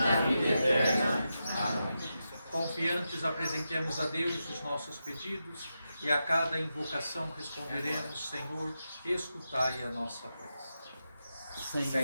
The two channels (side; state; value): both; inverted; correlation -0.88